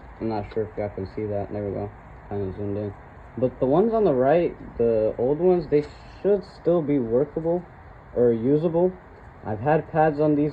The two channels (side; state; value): both; identical; correlation 1.00